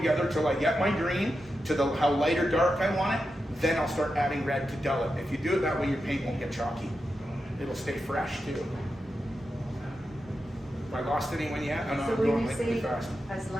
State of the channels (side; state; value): both; normal; correlation 0.89